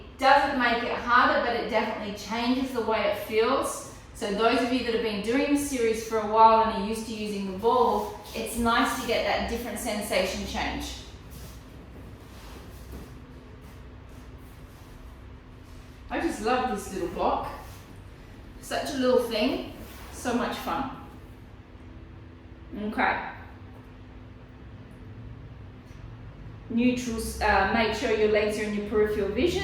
doesn't make it harder, but it definitely changes the way it feels. So those of you that have been doing this series for a while and are used to using the ball, it's nice to get that different sensation change. I just love this little block. Such a little thing, so much fun. Okay. Neutral, make sure your legs are in your peripheral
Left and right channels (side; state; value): both; identical; correlation 1.00